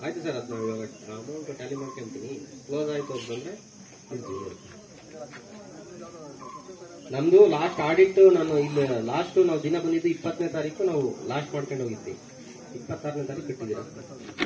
ಆಯ್ತು ಸರ್, ಅದು ನಾವು ಇವಾಗ ಅಮೌಂಟ್ ಟ್ಯಾಲಿ ಮಾಡ್ಕೊಂತೀನಿ. ಕ್ಲೋಸ್ ಆಯ್ತು ಅಂತಂದ್ರೆ ನಮ್ದು ಲಾಸ್ಟ್ ಆಡಿಟ್ ನಾನು ಇಲ್ಲಿ ಲಾಸ್ಟ್ ನಾವು ದಿನ ಬಂದಿದ್ದು 20ನೇ ತಾರೀಕು ನಾವು ಲಾಸ್ಟ್ ಮಾಡ್ಕೊಂಡು ಹೋಗಿದ್ವಿ. 26ನೇ ತಾರೀಕು ಕಟ್ಟಿದ್ದೀರಾ.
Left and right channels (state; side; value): identical; both; correlation 1.00